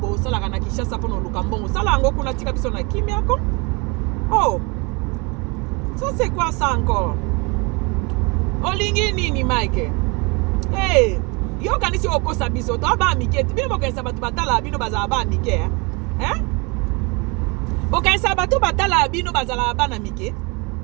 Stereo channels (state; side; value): quieter; left; 29.1 dB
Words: sala kana Kinshasa pono lukambongo sala ngo kuna tika biso na kimia ko. Oh, ça c'est quoi ça encore? Olingi nini Mike? Hey, yo kanisi okosa biso to ba mike bino bokensa batu batala bino bazala ba mike hein? Bokensa batu batala bino bazala ba na mike.